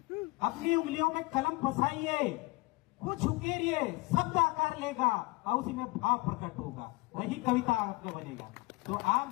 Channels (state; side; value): quieter; right; 24.4 dB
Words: अपनी उंगलियों में कलम फंसाइए, कुछ उकेरिए, शब्द आकार लेगा और उसी में भाव प्रकट होगा, वही कविता आपका बनेगा। तो